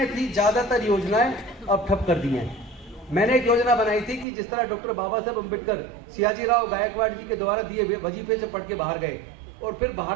थी, ज्यादातर योजनाएं अब ठप कर दी हैं। मैंने एक योजना बनाई थी कि जिस तरह डॉक्टर बाबा साहब अम्बेडकर सियाजीराव गायकवाड़ जी के द्वारा दिए वजीफे से पढ़ के बाहर गए, और फिर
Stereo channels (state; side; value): drops out; left; at 4.2 s